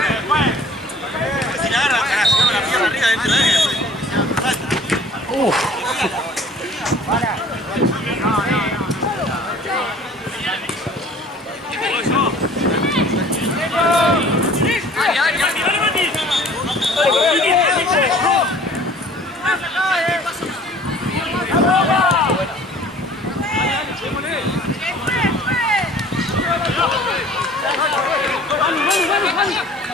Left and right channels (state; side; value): normal; both; correlation 0.50